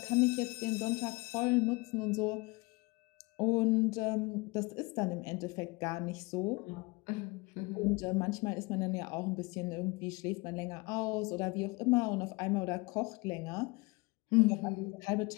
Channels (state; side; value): quieter; right; 25.6 dB